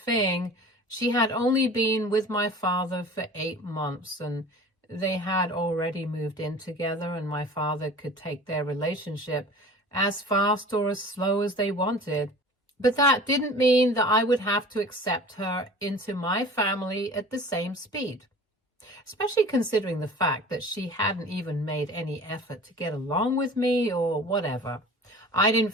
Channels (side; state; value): both; normal; correlation 0.41